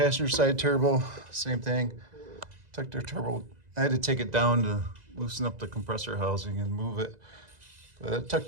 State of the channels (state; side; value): late; left; 2.0 ms